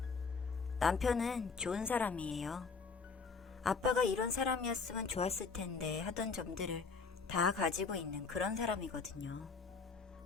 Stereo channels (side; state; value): right; quieter; 4.8 dB